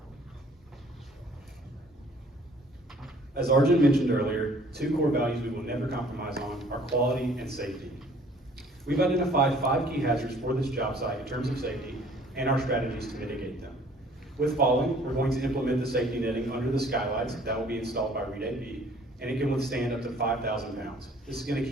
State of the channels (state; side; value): normal; both; correlation 0.56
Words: As Arjun mentioned earlier, two core values we will never compromise on are quality and safety. We've identified 5 key hazards for this job site in terms of safety and our strategies to mitigate them. With falling, we're going to implement the safety netting under the skylights that will be installed by Reed AB, and it can withstand up to 5,000 pounds. This is going to